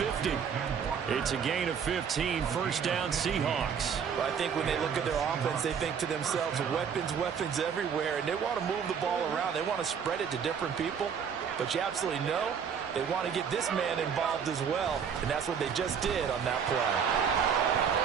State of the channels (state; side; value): quieter; left; 7.1 dB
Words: It's a gain of 15, first down Seahawks. Well, I think when they look at their offense, they think to themselves, weapons everywhere, and they want to move the ball around. They want to spread it to different people, but you absolutely know they want to get this man involved as well, and that's what they just did on that play.